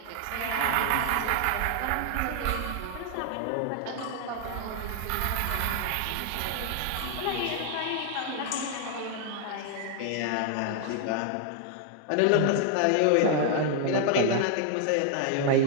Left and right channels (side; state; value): both; different; correlation 0.00